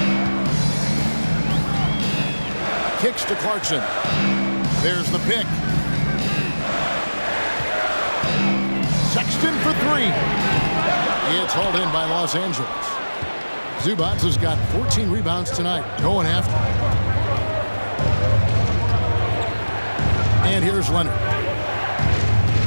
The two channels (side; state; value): both; inverted; correlation -1.00